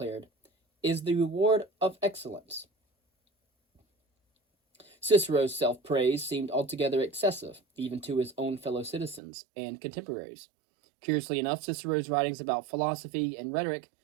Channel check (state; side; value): drops out; left; at 9.2 s